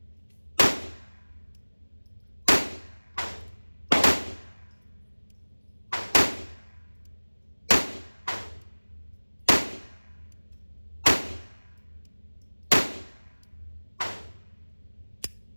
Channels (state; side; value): inverted; both; correlation -1.00